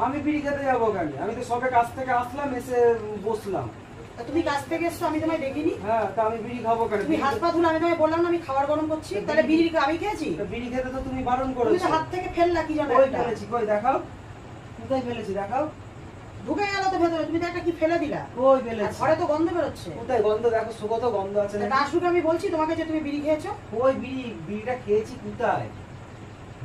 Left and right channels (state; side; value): identical; both; correlation 1.00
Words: আমি বিড়ি খেতে যাবো কেন? আমি তো সবে কাছ থেকে আসলাম, এসে বসলাম। তুমি কাছ থেকে এসছো, আমি তোমায় দেখিনি। হ্যাঁ, তা আমি বিড়ি খাবো কেন? তুমি হাত পা ধুলে, আমি তোমায় বললাম না আমি খাবার গরম করছি, তাহলে বিড়ি আমি খেয়েছি? বিড়ি খেতে তো তুমি বারণ তুমি করেছো। তো হাত থেকে ফেললা কি জানো? কই ফেলেছি? কই দেখাও, কোথায় ফেলেছি দেখাও। ঢুকে গেল তো ভেতরে, তুমি তো একটা কি ফেলে দিলা। কই ফেলেছি? ঘরে তো গন্ধ বেরোচ্ছে। কোথায় গন্ধ? দেখো সুগত গন্ধ আছে না? আসুকে আমি বলছি তোমাকে যে তুমি বিড়ি খেয়েছো। কই বিড়িটা খেয়েছি কোথায়?